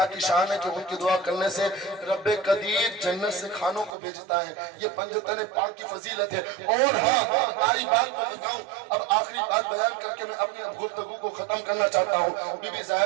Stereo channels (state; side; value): drops out; left; at 3.9 s